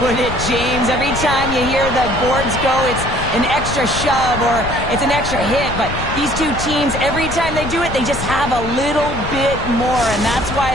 it, James. Every time you hear the boards go, it's an extra shove or it's an extra hit. But these two teams, every time they do it, they just have a little bit more. And that's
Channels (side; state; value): left; noise; rumble, 7 dB below the sound